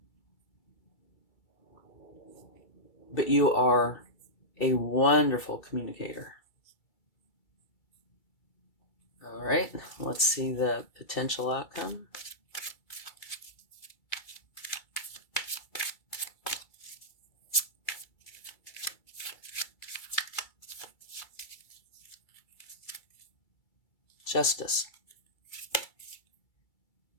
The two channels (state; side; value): late; right; 2.3 ms